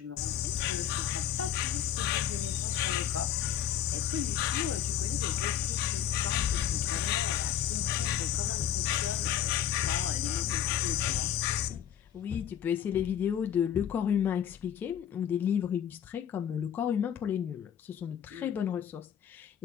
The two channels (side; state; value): right; quieter; 9.9 dB